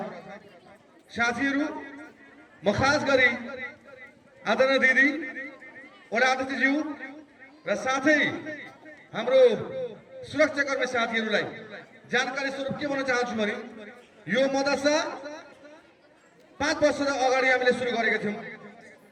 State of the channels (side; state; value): both; identical; correlation 1.00